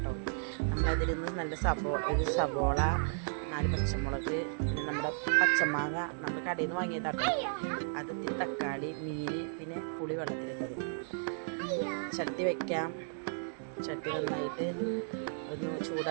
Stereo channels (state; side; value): silent; left; digital silence